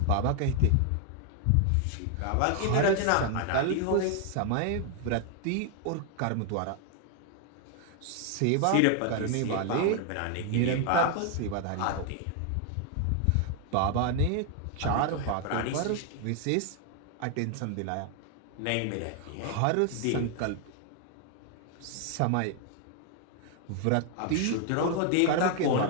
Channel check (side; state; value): both; different; correlation 0.00